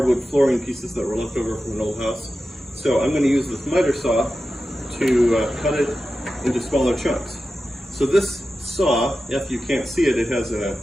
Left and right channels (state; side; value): normal; both; correlation 0.93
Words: flooring pieces that were left over from an old house. So I'm going to use this Mitre Saw to cut it into smaller chunks. So this saw, if you can't see it, it has a